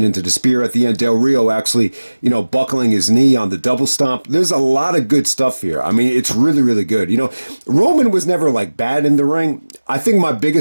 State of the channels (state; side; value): inverted; both; correlation -1.00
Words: into the spear at the end, Del Rio actually, buckling his knee on the double stomp. There's a lot of good stuff here. I mean, it's really, really good. Roman was never like bad in the ring. I think my